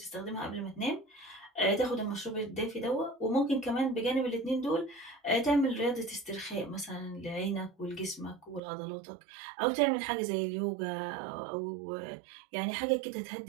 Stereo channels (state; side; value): drops out; left; at 8.6 s